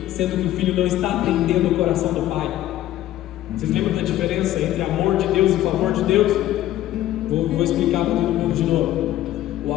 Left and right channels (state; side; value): quieter; right; 13.8 dB